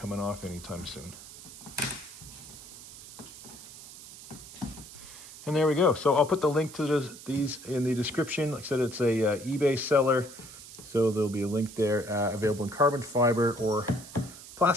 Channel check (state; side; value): noise; right; hiss, 16 dB below the sound